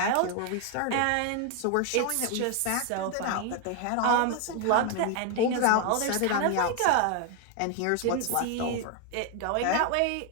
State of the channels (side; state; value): both; different; correlation 0.01